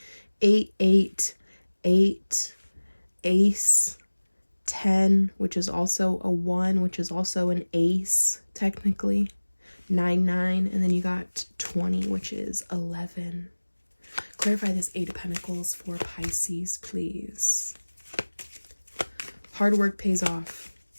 8, 8, 8, Ace, 10, which is also a 1, which is also an ace, technically. 9, 9, and then you got 20, which is 11. Clarify this 8 of Pentacles for Pisces, please. Hard work pays off.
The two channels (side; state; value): both; inverted; correlation -1.00